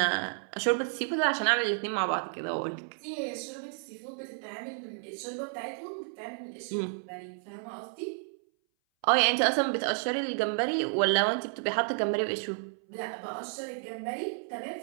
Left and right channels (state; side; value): silent; left; 57 dB below the other